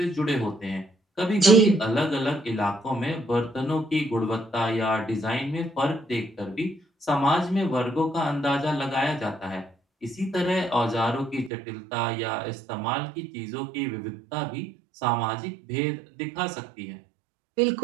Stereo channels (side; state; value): left; drops out; at 11.5 s